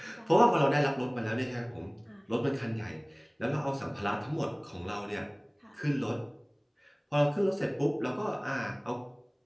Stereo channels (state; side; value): identical; both; correlation 1.00